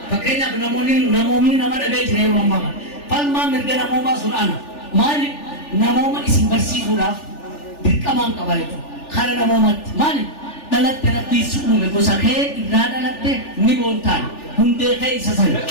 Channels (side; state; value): right; late; 3.4 ms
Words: Fakenya namoonni nama dhaga'ee jira yeroo ammaa falmaa mirga namoomaa sun ana maali namooma isin barsiisuudhaaf dirqamaan qaba jechuudha. Kara namoomatti maali dhalatte rabbii si uume gosa kee irraa dhalatte ni boontaan hundee kee isa sana